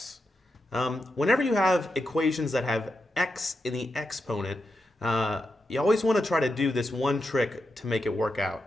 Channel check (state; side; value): normal; both; correlation 0.87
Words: Whenever you have equations that have x in the exponent, you always want to try to do this one trick to make it work out.